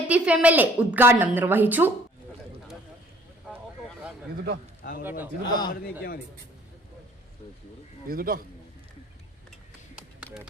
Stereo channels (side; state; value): both; normal; correlation 0.56